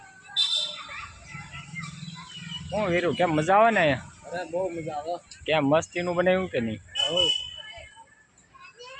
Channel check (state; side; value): identical; both; correlation 1.00